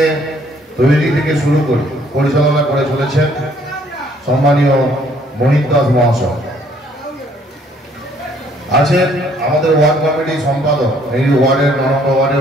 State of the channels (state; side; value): normal; both; correlation 0.63